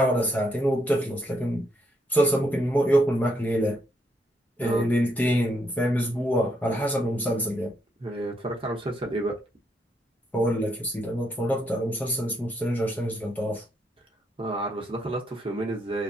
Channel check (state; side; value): normal; both; correlation 0.76